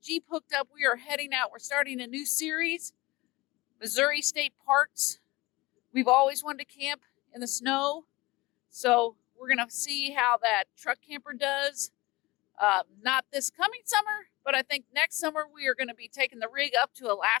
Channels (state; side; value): quieter; right; 21.2 dB